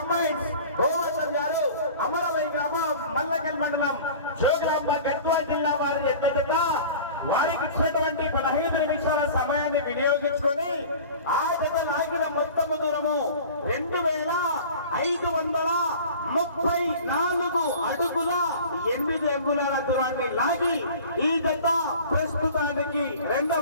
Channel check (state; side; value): inverted; both; correlation -0.41